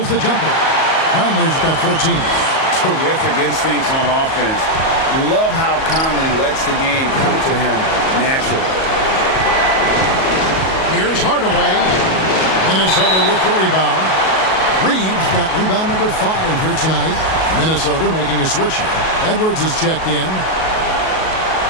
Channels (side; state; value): right; late; 37 ms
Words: the jumper. Conley's got 14. Terrific instincts on offense. Love how Conley lets the game come to him naturally. Here's Hardaway. Minnesota with the rebound. Reeves got rebound number 5 here tonight. Minnesota making a switch here. Edwards is checked in.